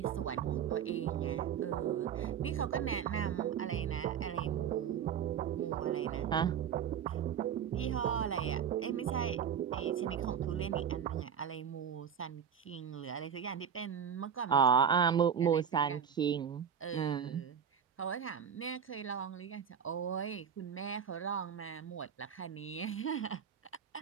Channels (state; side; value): quieter; left; 7.9 dB